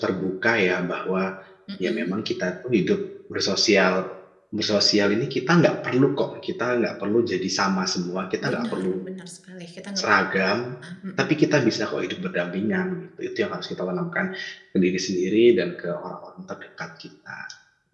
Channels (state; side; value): identical; both; correlation 1.00